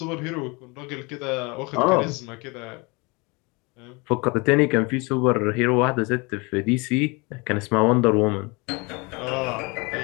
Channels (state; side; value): quieter; right; 27.8 dB